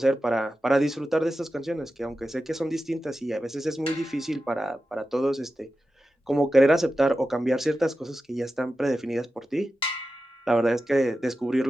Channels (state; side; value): normal; both; correlation 0.92